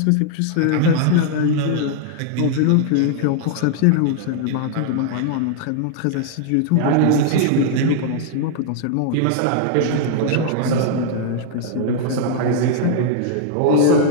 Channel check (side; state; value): both; different; correlation 0.00